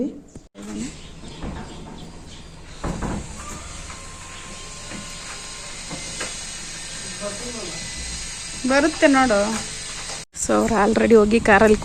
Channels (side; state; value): both; identical; correlation 1.00